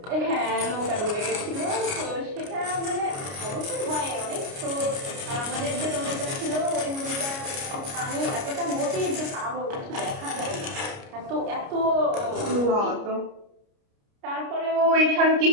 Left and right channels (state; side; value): late; left; 29 ms